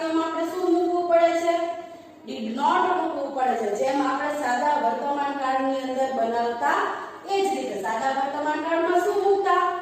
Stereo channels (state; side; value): identical; both; correlation 1.00